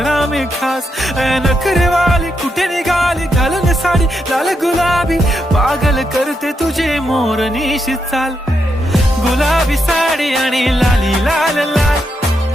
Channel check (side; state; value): both; normal; correlation 0.82